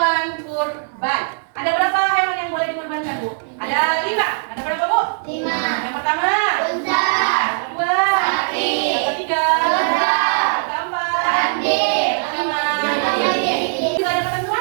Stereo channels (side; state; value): left; silent; digital silence